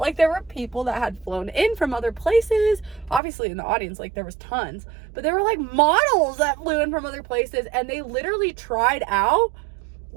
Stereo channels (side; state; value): left; drops out; at 3.2 s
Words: there were people that had flown in from other places. Obviously in the audience, like there was tons, but there were like models that flew in from other places, and they literally tried out